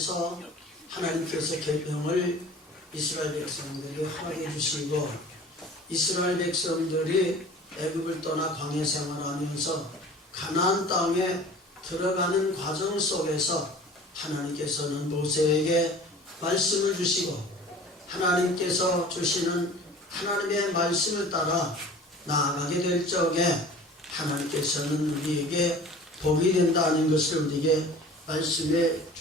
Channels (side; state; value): both; normal; correlation 0.43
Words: 하나님께서 계명을 이스라엘 백성들에게 허락해 주시고 이스라엘 백성들이 애굽을 떠나 광야 생활하면서 가나안 땅에 들어가는 과정 속에서 하나님께서는 모세에게 말씀을 주시고 하나님께서 주시는 하나님의 말씀을 따라 나아가게 될 적에 하나님께서는 우리에게 복이 된다는 것을 우리에게 말씀해